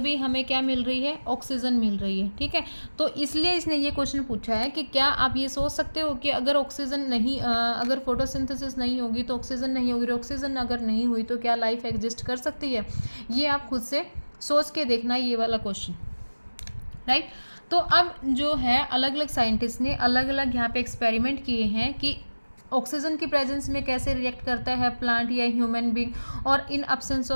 हमें क्या मिल रही है, ऑक्सीजन मिल रही है। ठीक है, तो इसलिए इसने ये क्वेश्चन पूछा है कि क्या आप ये सोच सकते हो कि अगर ऑक्सीजन नहीं अगर फोटोसिंथेसिस नहीं होगी तो ऑक्सीजन नहीं होगी, ऑक्सीजन अगर नहीं हुई तो क्या लाइफ एग्जिस्ट कर सकती है। ये आप खुद से सोच के देखना ये वाला क्वेश्चन, राइट। तो अब जो है अलग अलग साइंटिस्ट ने अलग अलग यहाँ पे एक्सपेरिमेंट किए हैं कि ऑक्सीजन की प्रेजेंस में कैसे रिएक्ट करता है प्लांट या ह्यूमन बीइंग, और इन एब्सेंस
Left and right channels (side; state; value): both; inverted; correlation -1.00